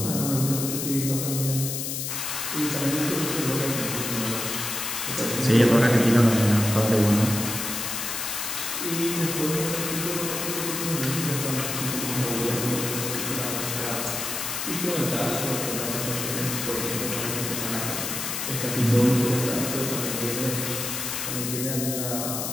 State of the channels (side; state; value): left; noise; hiss, 3 dB below the sound